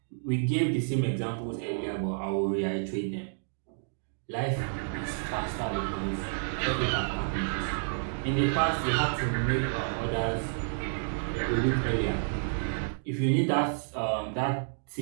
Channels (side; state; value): left; silent; digital silence